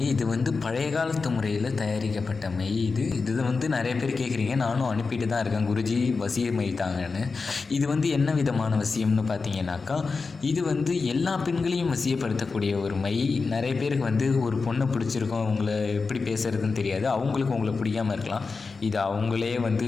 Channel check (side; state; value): right; quieter; 4.4 dB